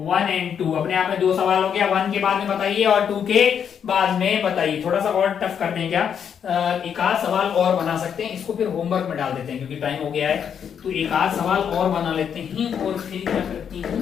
and 2। अपने आप में 2 सवाल हो गया, 1 के बाद में बताइए और 2 के बाद में बताइए। थोड़ा सा और टफ करते हैं क्या, एक आध सवाल और बना सकते हैं, इसको फिर होमवर्क में डाल देते हैं क्योंकि टाइम हो गया है। तो एक आध सवाल और बना लेते हैं और फिर क्या करते हैं,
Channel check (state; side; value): quieter; right; 7.9 dB